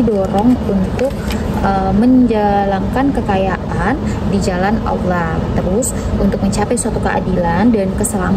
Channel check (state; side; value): identical; both; correlation 1.00